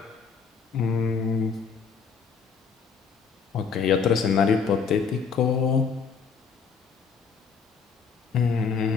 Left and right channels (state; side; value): quieter; right; 5.8 dB